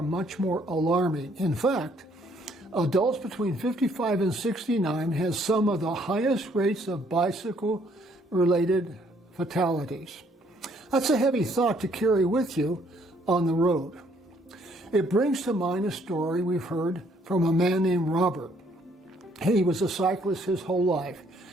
much more alarming. In fact, adults between 55 and 69 has some of the highest rates of bicycle-related fatalities. That's a heavy thought to carry with you on the road. It brings to mind a story we've heard from a man named Robert. He was a cyclist his whole life.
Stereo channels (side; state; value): both; normal; correlation 0.66